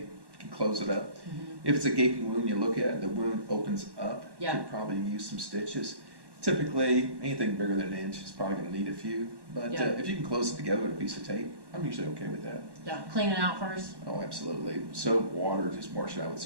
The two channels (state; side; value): late; left; 1.1 ms